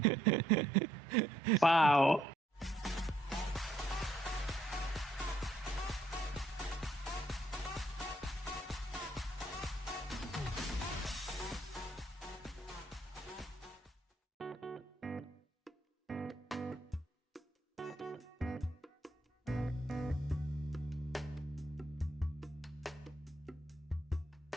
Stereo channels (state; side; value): normal; both; correlation 0.71